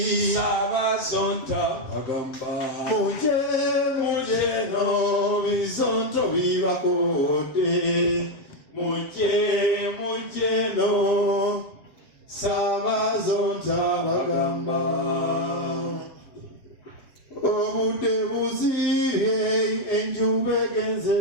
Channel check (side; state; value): right; late; 7.9 ms